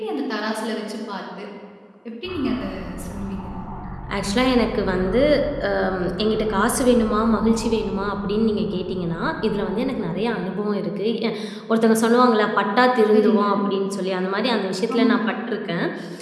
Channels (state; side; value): identical; both; correlation 1.00